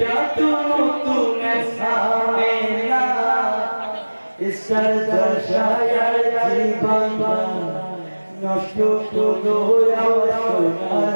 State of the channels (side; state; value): both; inverted; correlation -1.00